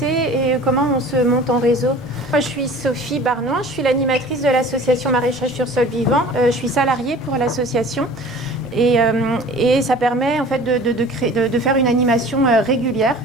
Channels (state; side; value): normal; both; correlation 0.44